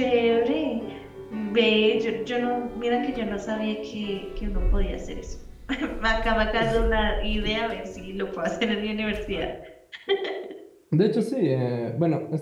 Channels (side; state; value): both; identical; correlation 1.00